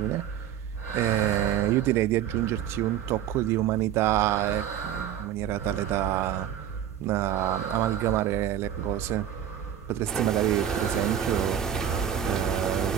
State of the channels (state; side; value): quieter; left; 10.2 dB